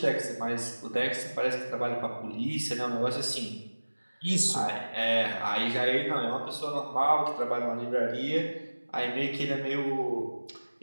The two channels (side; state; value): both; inverted; correlation -1.00